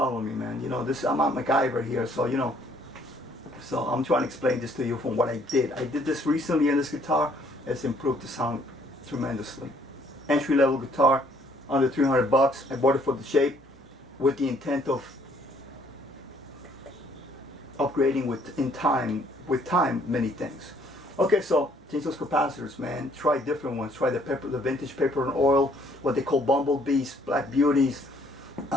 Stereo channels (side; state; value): both; normal; correlation 0.63